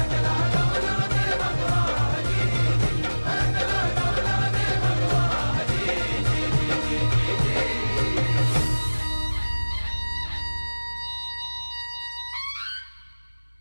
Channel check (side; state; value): both; inverted; correlation -1.00